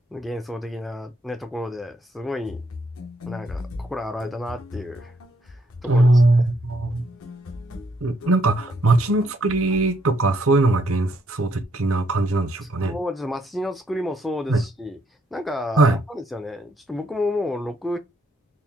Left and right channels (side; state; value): both; normal; correlation 0.73